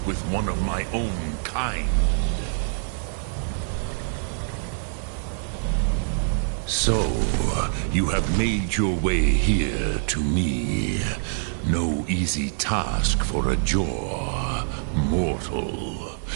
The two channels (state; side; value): silent; left; digital silence